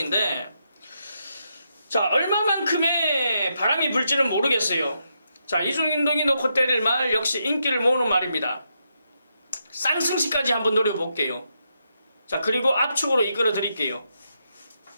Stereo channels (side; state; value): both; inverted; correlation -0.81